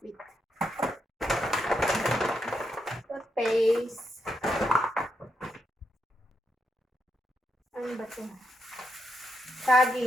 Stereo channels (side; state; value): both; normal; correlation 0.81